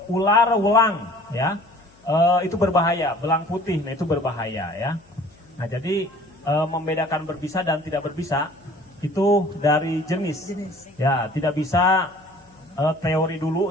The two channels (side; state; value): left; noise; hum, 29 dB below the sound